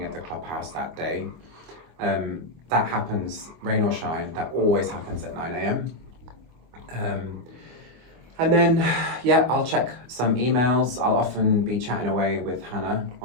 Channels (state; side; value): late; left; 24 ms